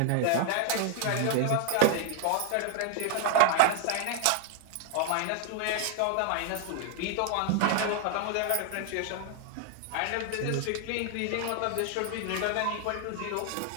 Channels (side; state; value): both; different; correlation 0.00